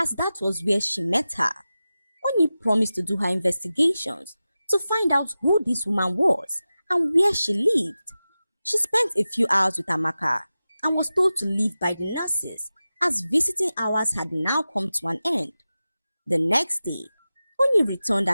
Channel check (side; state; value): both; inverted; correlation -0.94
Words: that was where she met her. Oni promised to do her investigations to find out who this woman was and where she lived. She spent a few hours with Amaka and was told to leave by the nurses, as visiting hours had now come to an end. The next day, Oni returned